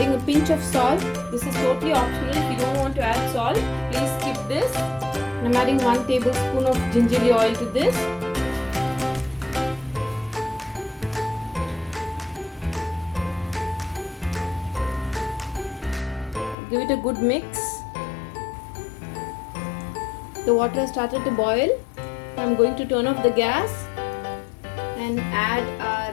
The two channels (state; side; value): drops out; right; at 16.6 s